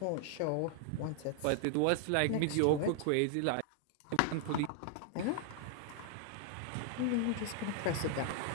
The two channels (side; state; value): both; different; correlation 0.00